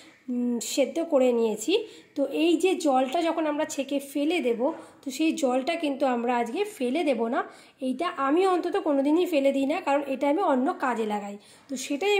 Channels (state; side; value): identical; both; correlation 1.00